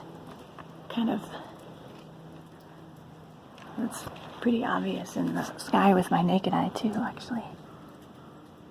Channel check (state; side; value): identical; both; correlation 1.00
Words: kind of, it's pretty obvious in the sky with my naked eye too, actually.